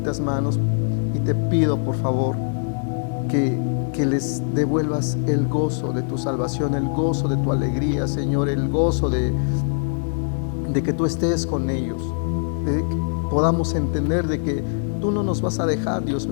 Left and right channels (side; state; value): right; silent; 64 dB below the other